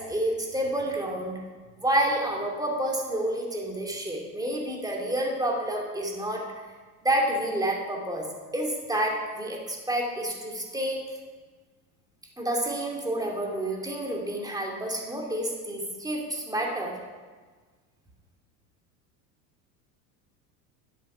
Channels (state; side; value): normal; both; correlation 0.34